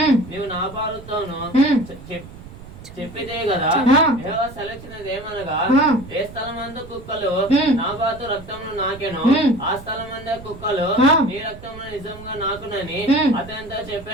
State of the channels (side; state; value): right; noise; rumble, 17 dB below the sound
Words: నీవు నాబాలుతోను చెప్పితే కదా. యెహోవా సెలవిచ్చినదేమనగా, ఏ స్థలమందు కుక్కలు నాబాతు రక్తమును నాకెను, ఆ స్థలమందు కుక్కలు నీ రక్తమును నిజంగా నాకునని అతనితో